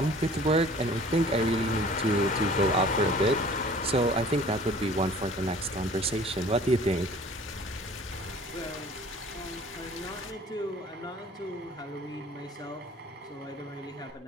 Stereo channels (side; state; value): both; normal; correlation 0.48